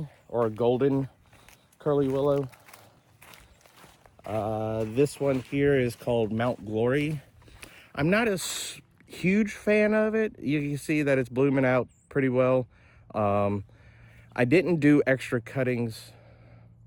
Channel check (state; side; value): identical; both; correlation 1.00